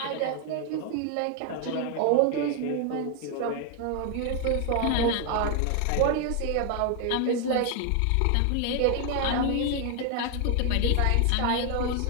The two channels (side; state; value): both; different; correlation 0.00